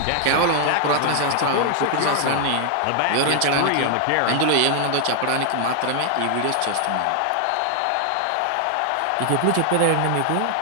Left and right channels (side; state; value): both; different; correlation 0.00